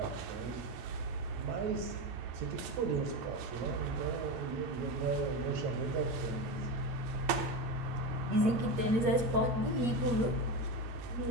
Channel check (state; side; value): late; left; 8.5 ms